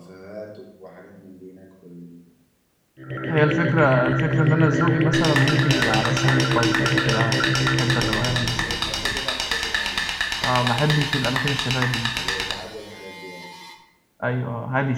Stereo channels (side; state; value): both; identical; correlation 1.00